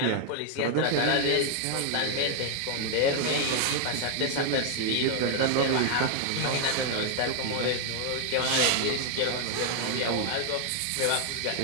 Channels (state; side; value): different; both; correlation 0.00